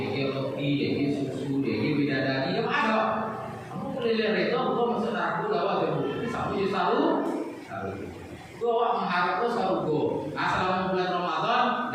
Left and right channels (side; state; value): both; identical; correlation 1.00